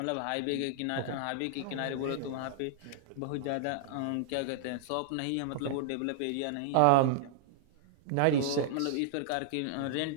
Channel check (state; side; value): different; both; correlation -0.01